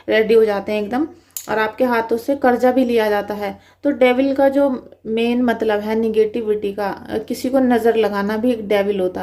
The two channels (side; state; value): both; identical; correlation 1.00